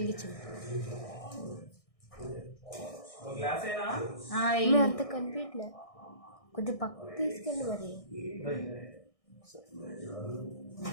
ఒక గ్లాసేనా? మేము అంత కనిపించలే, కొంచెం పక్కకు తీసుకెళ్ళి మరి.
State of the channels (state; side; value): late; right; 1.6 ms